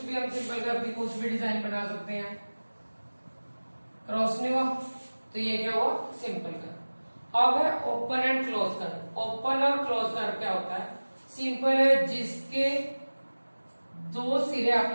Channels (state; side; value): inverted; both; correlation -1.00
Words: भी हम सिंपल कर्व की कुछ भी डिजाइन बना सकते हैं, क्रॉस नहीं हुआ तो ये क्या हुआ सिंपल कर्व। अब है open and close curve. Open और क्लोज कर्व क्या होता है, सिंपल है जिसके दो सिरे